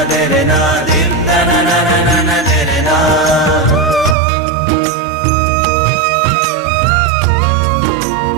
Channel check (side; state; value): left; drops out; at 4.2 s